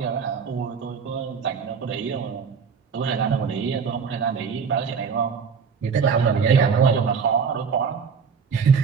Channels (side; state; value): left; quieter; 6.0 dB